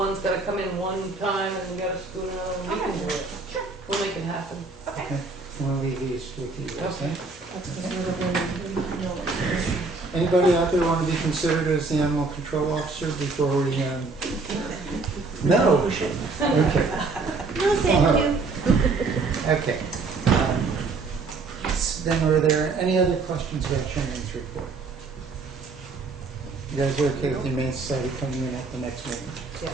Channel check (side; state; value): left; quieter; 4.0 dB